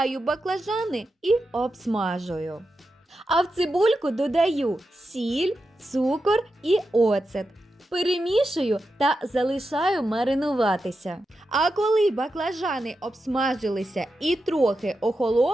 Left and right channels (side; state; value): both; normal; correlation 0.89